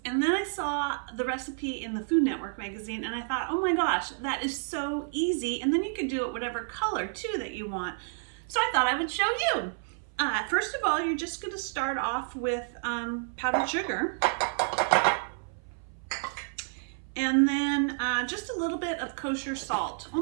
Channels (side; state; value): left; silent; 57 dB below the other